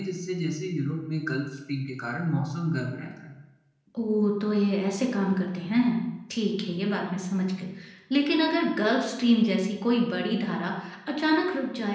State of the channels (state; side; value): identical; both; correlation 1.00